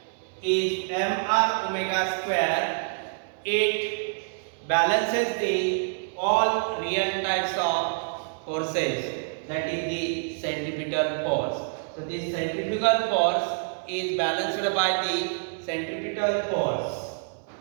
is mr omega square. It balances the all real types of forces, that is the centripetal force. So this centrifugal force is balanced by the centripetal force.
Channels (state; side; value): silent; left; 60 dB below the other